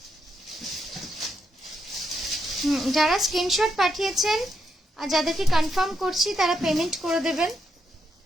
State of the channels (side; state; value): both; normal; correlation 0.80